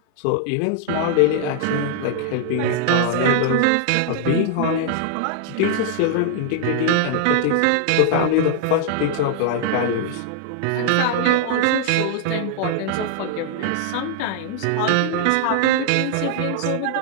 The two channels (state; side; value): different; both; correlation 0.00